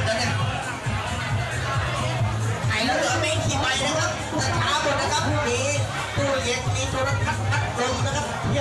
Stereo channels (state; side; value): identical; both; correlation 1.00